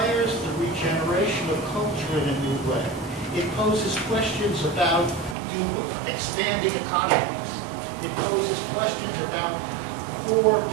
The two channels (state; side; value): drops out; left; at 5.4 s